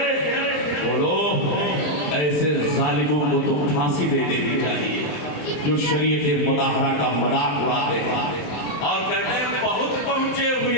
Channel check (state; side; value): late; right; 27 ms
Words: بولو ایسے ظالموں کو تو پھانسی دے دینی چاہیے جو شریعت مظاہرہ کا مذاق اڑاتے ہیں اور کہتے ہیں بہت پہنچے